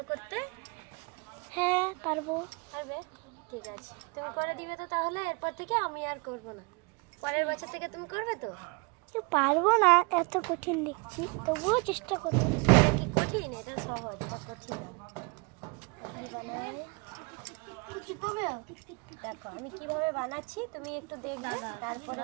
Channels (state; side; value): quieter; left; 30.5 dB